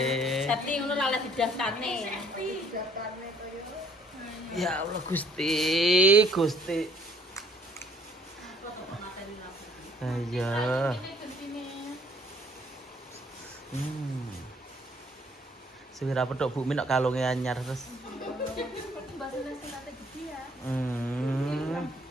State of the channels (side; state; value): both; normal; correlation 0.61